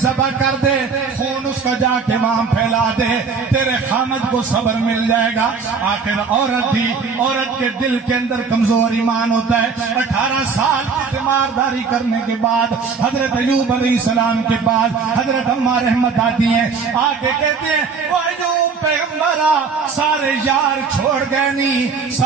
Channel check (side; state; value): left; quieter; 5.2 dB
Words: ذبح کر دے، خون اس کا جا کے وہاں پھیلا دے، تیرے خامد کو صبر مل جائے گا۔ آخر عورت تھی، عورت کے دل کے اندر کمزور ایمان ہوتا ہے۔ 18 سال کی تیمارداری کرنے کے بعد حضرت ایوب علیہ السلام کے بعد حضرت اماں رحمت آتی ہیں، آ کے کہتے ہیں وہ ایوب پیغمبرہ سارے یار چھوڑ گئے نہیں،